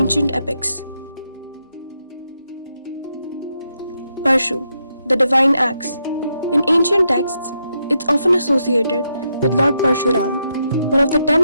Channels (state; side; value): inverted; both; correlation -0.81